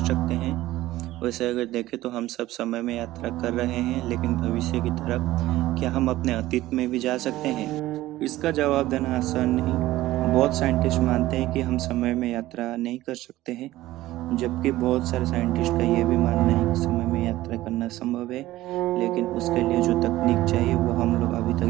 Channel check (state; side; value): quieter; left; 16.2 dB